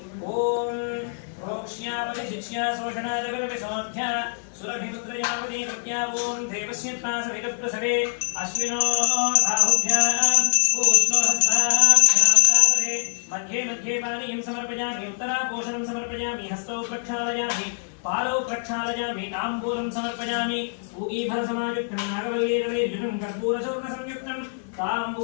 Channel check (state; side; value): silent; right; 62 dB below the other